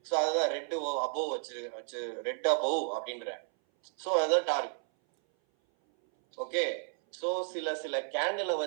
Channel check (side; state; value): left; silent; 56 dB below the other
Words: சோ அதுதான் ரெட் அபோவ் வச்சு ரெட் அபோவ் அப்படின்ற. சோ அதுதான் டார்கெட். ஓகே, சோ சில கேண்டிலை